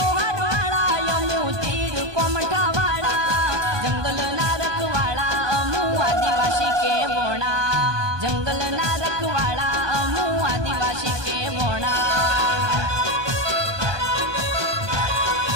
जंगल ना रखवाड़ा अमु आदिवासी के वोणा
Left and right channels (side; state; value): left; late; 1.2 ms